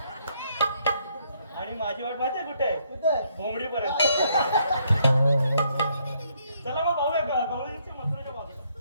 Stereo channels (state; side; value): inverted; both; correlation -0.71